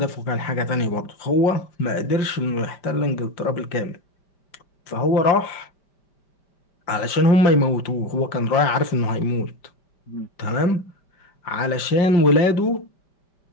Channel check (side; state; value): right; late; 5.1 ms